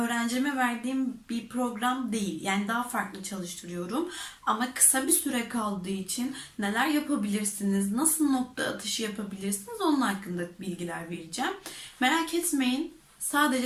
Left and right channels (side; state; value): both; identical; correlation 1.00